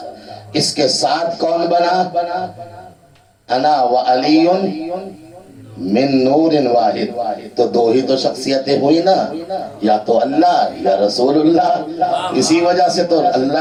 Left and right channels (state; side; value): identical; both; correlation 1.00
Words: اس کے ساتھ کون بنا؟ انا و علی من نور واحد، تو دو ہی تو شخصیتیں ہوئی نا، یا تو اللہ یا رسول اللہ۔ اسی وجہ سے تو